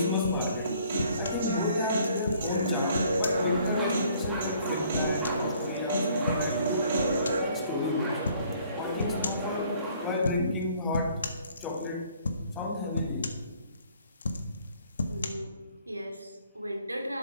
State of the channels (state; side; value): inverted; both; correlation -0.60